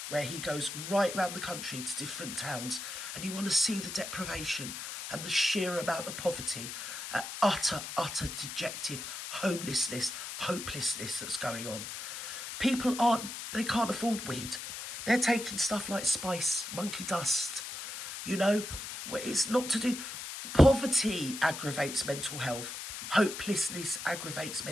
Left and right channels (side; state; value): left; noise; hiss, 7 dB below the sound